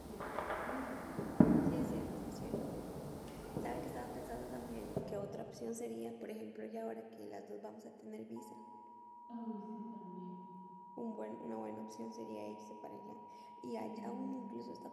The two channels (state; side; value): identical; both; correlation 1.00